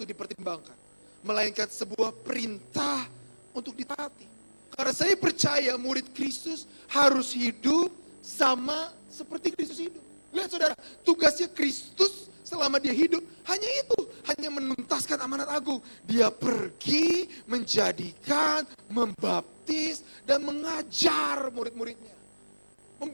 dipertimbangkan, melainkan sebuah perintah untuk ditaati. Karena saya percaya murid Kristus harus hidup sama seperti Kristus hidup. Lihat saudara, tugasnya Kristus selama dia hidup hanya itu, hanya menuntaskan amanat agung. Dia pergi menjadikan, membaptis, dan mengajar murid-muridnya.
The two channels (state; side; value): inverted; both; correlation -1.00